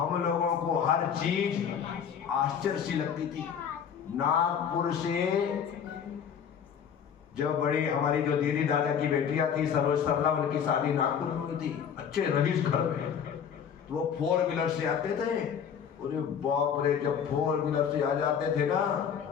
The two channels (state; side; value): quieter; right; 7.8 dB